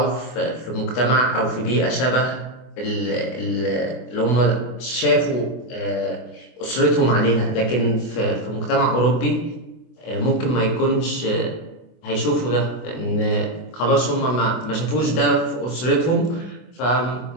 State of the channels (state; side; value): late; right; 24 ms